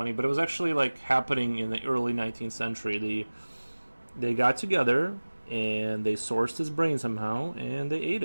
But it was actually like happening in the early 19th century. They got together and they sourced his brain somehow and they ate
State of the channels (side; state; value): both; inverted; correlation -1.00